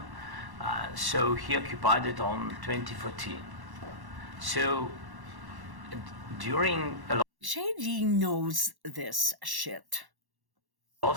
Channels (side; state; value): left; late; 1.1 ms